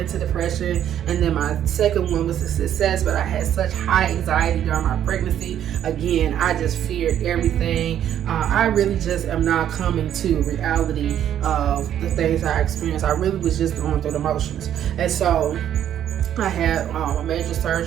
depression. And then my second one was a success, but I had such high anxiety during my pregnancy. Again, I just feared everything. I really just am now coming to reality of the things I experienced. I really was just going through the motions. And so I had a major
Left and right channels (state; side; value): quieter; left; 10.4 dB